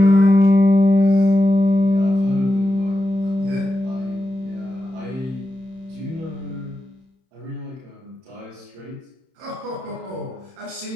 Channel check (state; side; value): late; left; 31 ms